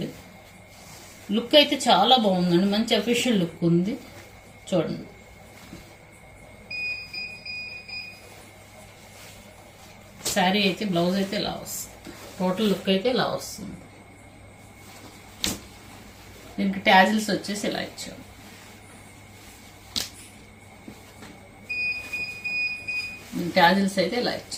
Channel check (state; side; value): identical; both; correlation 1.00